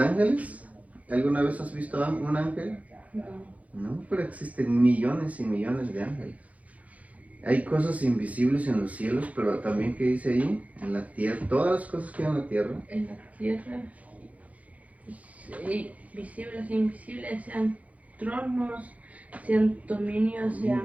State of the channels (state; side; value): late; left; 0.069 ms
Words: ¿Alguna vez has visto un ángel? No. No, pero existen millones y millones de ángeles. Hay cosas invisibles en los cielos, pero también, ¿qué dice ahí? En la tierra, todas las cosas que hay en la tierra. En la tierra, visibles e invisibles, sean tronos, sean dominios,